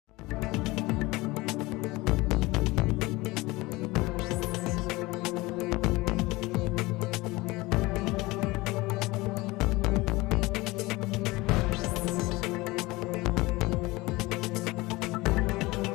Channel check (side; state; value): right; quieter; 21.5 dB